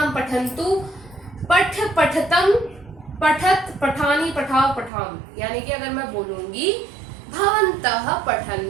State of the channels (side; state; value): left; drops out; at 4.9 s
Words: पठन्तु, पठ, पठतम, पठत, पठानी, पठाओ, पठाम। यानी कि अगर मैं बोलूंगी भवन्तः